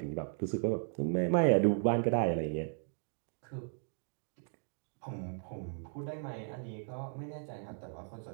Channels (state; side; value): silent; left; 54 dB below the other